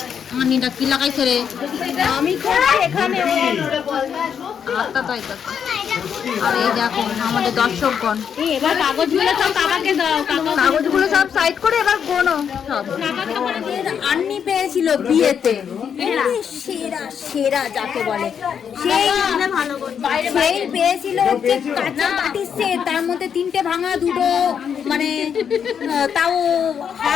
আনিটা কি লাগাইছে রে আমি করছি এখানে আটটা তাই তো আর এই দেখো আমাদের দর্শকগণ এবার কাগজগুলো সব কাকাকে দাও কাগজগুলো সব সাইড করে এবার গোনো সব আন্নি পেয়েছিল বিয়েতে সেরা সেরা যাকে বলে সেই পেয়েছিল হচ্ছে কাঁচা বাটির সেট তার মধ্যে তিনটে ভাঙা দুটো মানে তাও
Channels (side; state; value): right; quieter; 7.7 dB